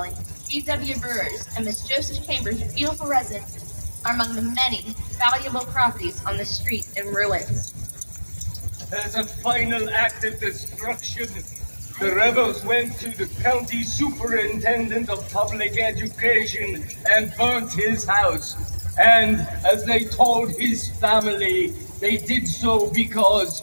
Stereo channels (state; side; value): inverted; both; correlation -1.00